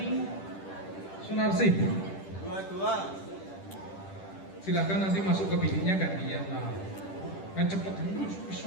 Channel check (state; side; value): late; right; 10 ms